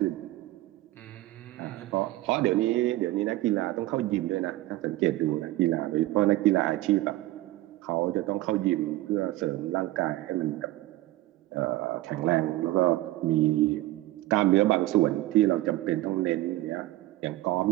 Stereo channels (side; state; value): left; quieter; 17.1 dB